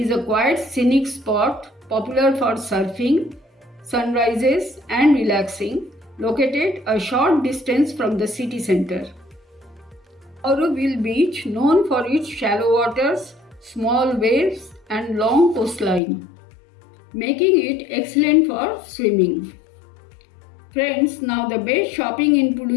a quiet scenic spot popular for surfing, sunrises, and relaxing, located a short distance from the city center. Auroville Beach, known for its shallow waters, small waves and long coastline, making it excellent for swimming. Friends, now the best shopping in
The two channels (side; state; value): right; drops out; at 16.0 s